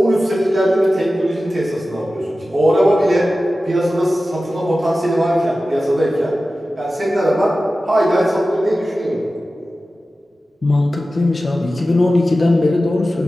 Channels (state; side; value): normal; both; correlation 0.95